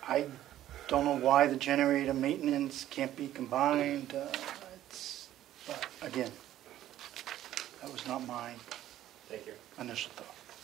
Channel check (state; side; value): quieter; left; 12.9 dB